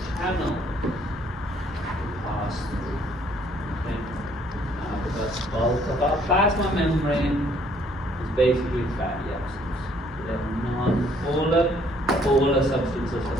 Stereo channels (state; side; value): normal; both; correlation 0.63